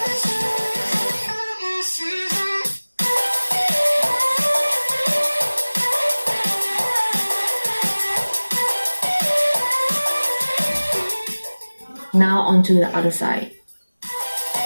Now onto the other side.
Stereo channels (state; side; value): inverted; both; correlation -1.00